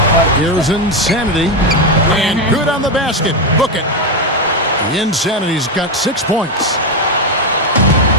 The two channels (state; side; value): normal; both; correlation 0.08